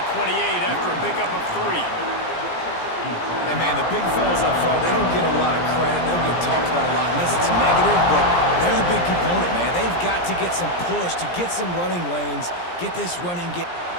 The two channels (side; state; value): right; late; 17 ms